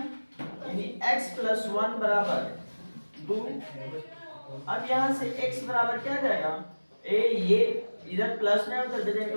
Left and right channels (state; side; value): inverted; both; correlation -1.00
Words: x प्लस 1 बराबर 2। अब यहाँ से x बराबर क्या जाएगा, ये इधर प्लस में उधर दे